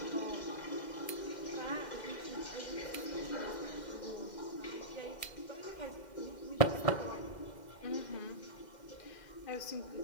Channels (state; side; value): late; right; 2.1 ms